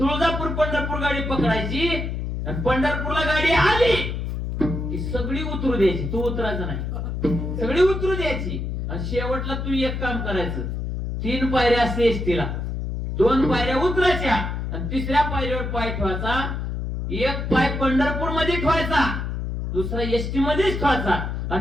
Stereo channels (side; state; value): left; noise; hum, 3 dB below the sound